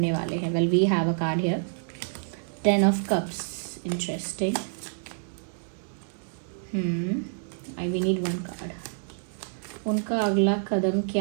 वाले हैं। Well, we have a card here, 10 of cups. Interesting. We need 1 card. उनका अगला कदम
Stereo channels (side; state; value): left; silent; digital silence